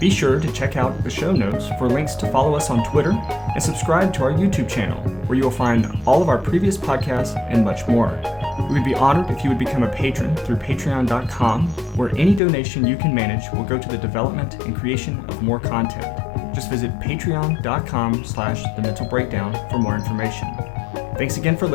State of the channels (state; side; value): drops out; right; at 12.4 s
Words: sure to check out the show notes for links to follow us on Twitter and subscribe to our YouTube channel, where you will find all of our previous podcasts and much more. We would be honored if you would become a patron through patreon.com, where any donation you can manage will go to the development and creation of more content. Just visit patreon.com/thementalbreakdown for more information. Thanks again for